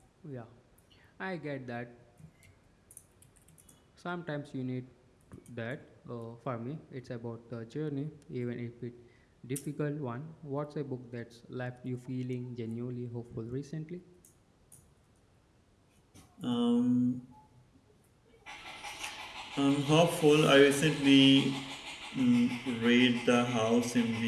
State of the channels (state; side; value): identical; both; correlation 1.00